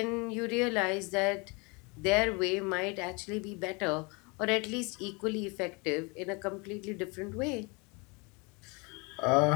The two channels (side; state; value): right; quieter; 29.3 dB